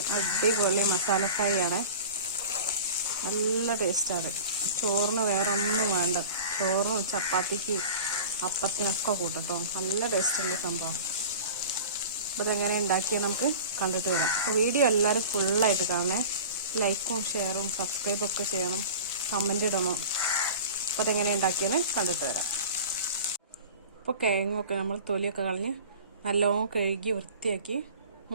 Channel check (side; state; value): both; inverted; correlation -0.38